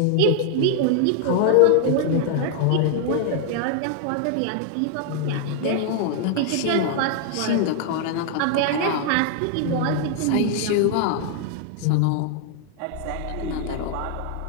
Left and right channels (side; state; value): both; different; correlation 0.00